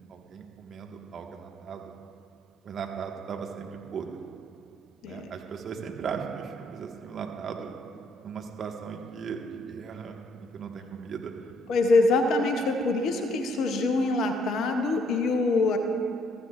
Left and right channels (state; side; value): normal; both; correlation 0.68